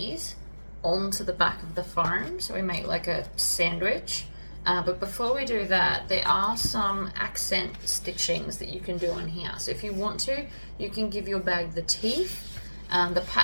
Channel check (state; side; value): inverted; both; correlation -1.00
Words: onto the back of the foam so we make like a sandwich. But before we do that, there are some accent stitchings that you can do on here. So if you want to, you can give your bag the teeth. The